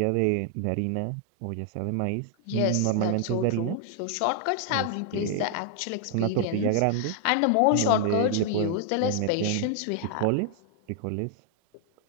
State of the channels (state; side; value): different; both; correlation 0.00